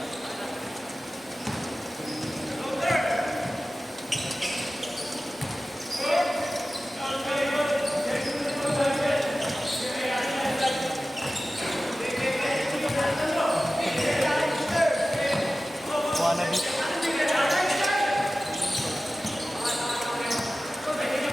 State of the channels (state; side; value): normal; both; correlation 0.95